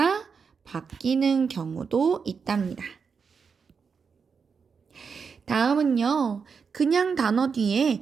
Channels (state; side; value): quieter; left; 5.8 dB